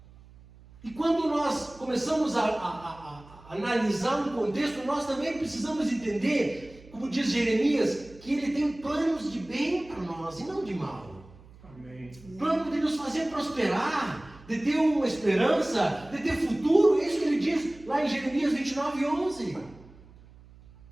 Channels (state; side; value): noise; right; hum, 23 dB below the sound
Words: E quando nós começamos a analisar um contexto, nós também precisamos entender, como diz Jeremias, que Ele tem planos de bem para nós e não de mal. Amém. Plano de nos fazer prosperar, de ter uma esperança, de ter futuro. É isso que Ele diz lá em Jeremias 29:11.